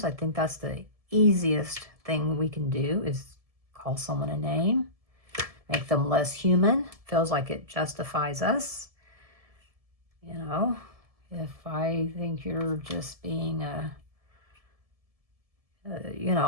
I think that's the easiest thing we can do, is call someone a name, make them less human. Feels like it justifies us. If I think you're just being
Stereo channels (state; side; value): late; left; 1.7 ms